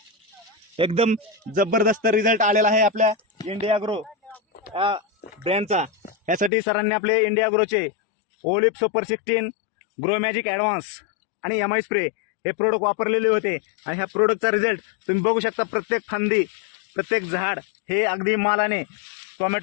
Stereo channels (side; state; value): right; drops out; at 6.5 s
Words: एकदम जबरदस्त रिझल्ट आलेला आहे आपल्या इंडिया ॲग्रो ब्रँडचा। यासाठी सरांनी आपले इंडिया ॲग्रोचे ओलिप सुपर 16, ग्रो मॅजिक ॲडव्हान्स आणि एम आय स्प्रे हे प्रोडक्ट वापरलेले होते आणि ह्या प्रोडक्टचा रिझल्ट तुम्ही बघू शकता। प्रत्येक फांदी, प्रत्येक झाड हे अगदी मालाने